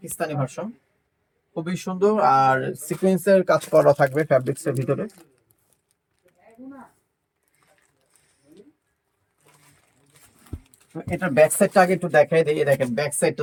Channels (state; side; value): identical; both; correlation 1.00